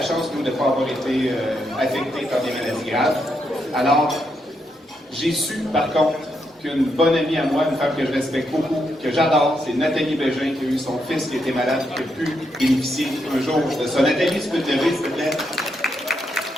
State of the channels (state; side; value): normal; both; correlation 0.80